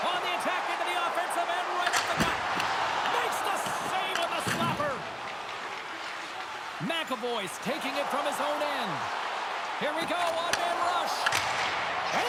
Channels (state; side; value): identical; both; correlation 1.00